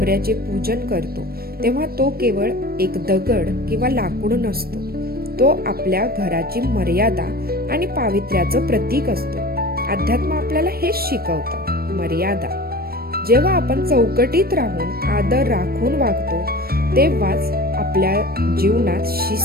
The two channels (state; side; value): late; left; 0.44 ms